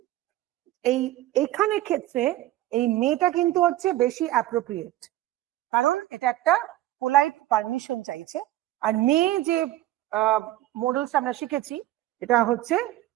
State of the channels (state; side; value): quieter; left; 15.2 dB